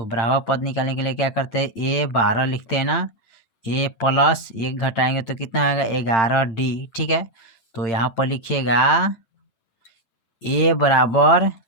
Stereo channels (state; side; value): late; right; 8.9 ms